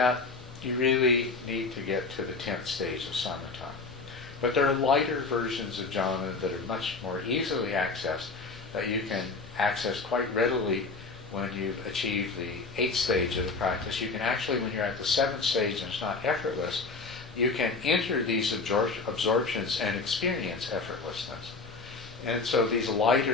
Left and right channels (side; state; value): right; quieter; 4.1 dB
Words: you really need to get to the 10th stage of samatha. But there are lighter versions of jhana that are much more easily accessed, that you can access quite readily when you've achieved the 8th stage of the practice. You can actually, when you're at the 7th stage and it's not effortless, you can enter these absorptions and experience effortlessness. And so these